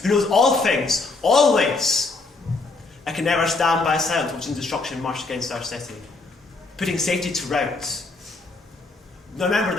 who knows all things, always. I can never stand by silent watching destruction march against our city, putting safety to rout. Now remember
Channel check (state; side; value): quieter; right; 3.6 dB